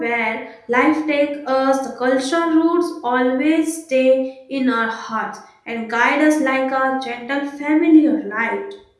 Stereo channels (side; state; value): both; identical; correlation 1.00